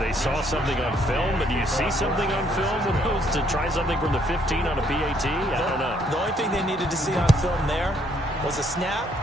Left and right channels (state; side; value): normal; both; correlation 0.68